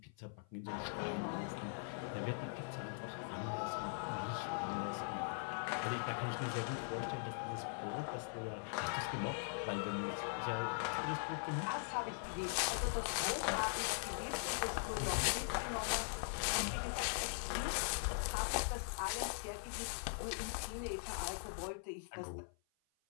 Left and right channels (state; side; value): silent; right; 50 dB below the other